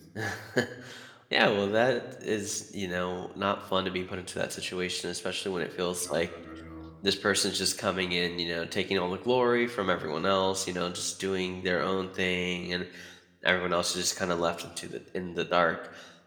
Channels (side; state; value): both; identical; correlation 1.00